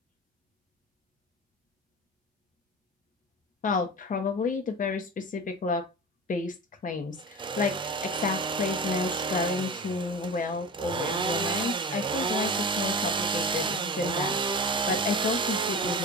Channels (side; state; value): both; normal; correlation 0.31